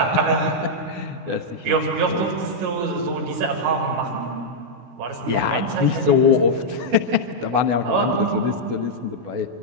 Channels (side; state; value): left; late; 16 ms